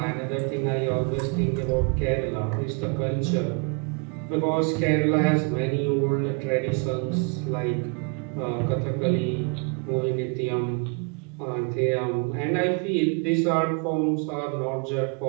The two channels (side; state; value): left; quieter; 33.5 dB